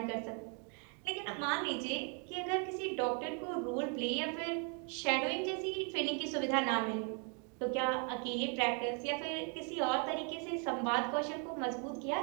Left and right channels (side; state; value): left; quieter; 38.3 dB